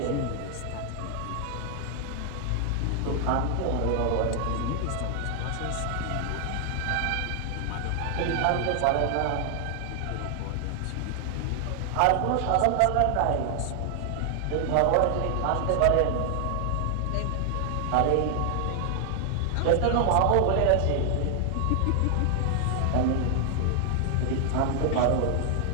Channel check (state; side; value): different; both; correlation 0.00